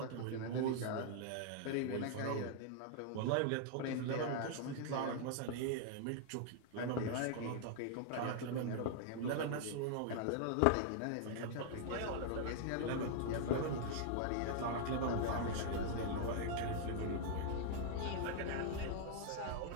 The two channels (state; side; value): different; both; correlation 0.00